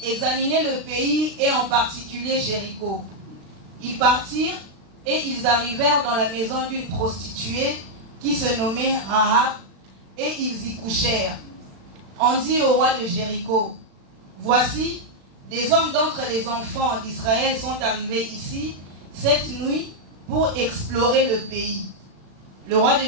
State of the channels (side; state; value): left; late; 36 ms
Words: examiner le pays et en particulier Jéricho. Ils partirent et ils arrivèrent dans la maison d'une prostituée qui se nommait Rahab et ils y couchèrent. On dit au roi de Jéricho: Voici, des hommes d'entre les enfants d'Israël sont arrivés ici cette nuit pour explorer le pays. Le roi de